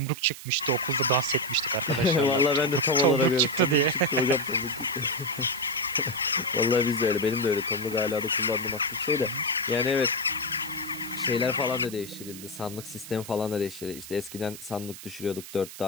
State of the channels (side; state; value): right; noise; hiss, 14 dB below the sound